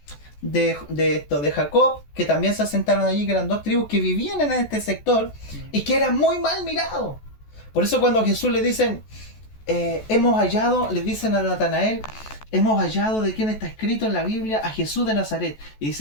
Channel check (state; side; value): late; right; 14 ms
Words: Jacob, que también se asentaron allí, que eran dos tribus que vivían en este sector y que eran muy mal mirados. Por eso cuando a Jesús le dicen, hemos hallado, le dicen a Natanael, hemos hallado de quién está escrito en la Biblia, a Jesús de Nazaret. Y